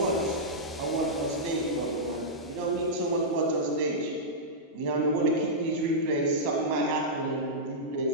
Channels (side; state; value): both; normal; correlation -0.12